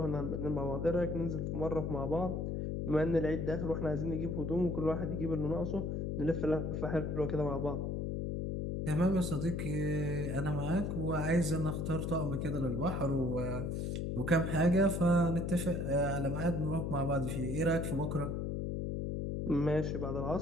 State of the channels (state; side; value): noise; left; hum, 1 dB below the sound